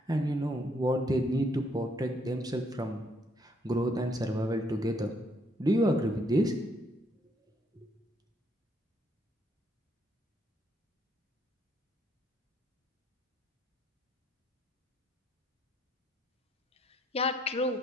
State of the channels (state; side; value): normal; both; correlation 0.70